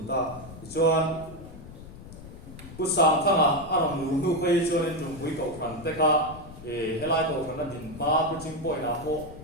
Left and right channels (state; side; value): noise; left; rumble, 15 dB below the sound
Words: Ta Chuan Ku Sam Thang Arom Nu Kai Chuan Jum Hui Kau Phan Te Kha Helai Kau Phan Din Ma Pu Ching Poi Na Ho